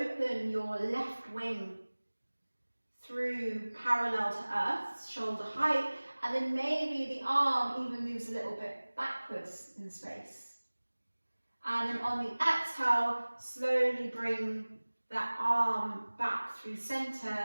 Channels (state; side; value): inverted; both; correlation -1.00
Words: your left wing through parallel to earth, shoulder height, and then maybe the arm even moves a little bit backwards in space. And then on the exhale, slowly bring that arm back through center